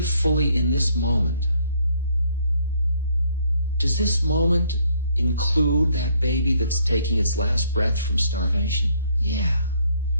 fully in this moment, does this moment include that baby that's taking its last breath from starvation? Yeah.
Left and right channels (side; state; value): both; inverted; correlation -0.67